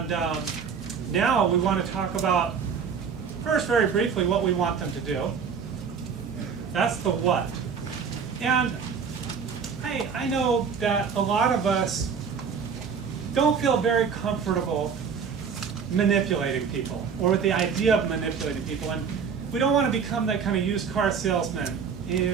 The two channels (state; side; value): quieter; left; 6.4 dB